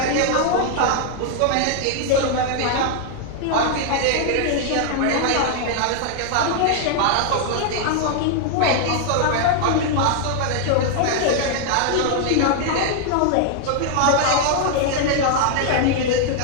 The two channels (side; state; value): both; different; correlation 0.00